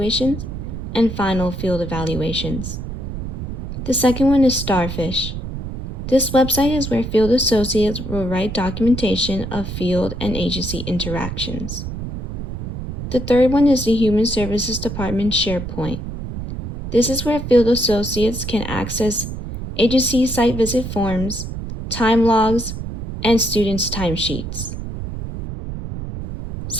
and final field evaluations. The second one is Starfish. This website is where field associates will write documentation of field and agency interactions. The third one is the Human Services Department SharePoint. This is where field associates can access agency site visit forms, time logs, and students' timesheets.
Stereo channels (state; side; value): noise; right; rumble, 7 dB below the sound